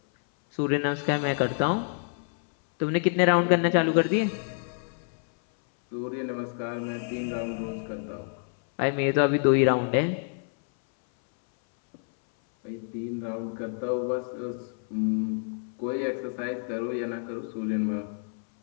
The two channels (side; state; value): right; silent; 60 dB below the other